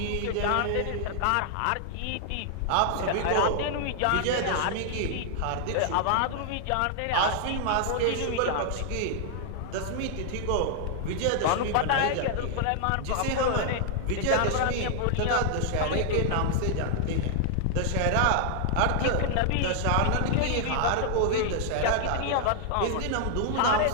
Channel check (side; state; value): both; different; correlation 0.00